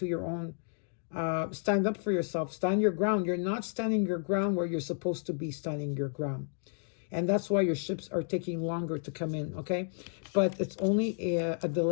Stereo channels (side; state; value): right; silent; digital silence